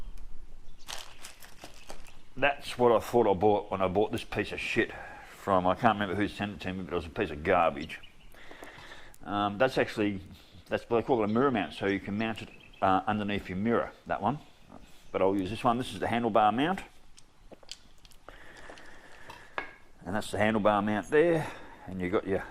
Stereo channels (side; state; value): both; identical; correlation 1.00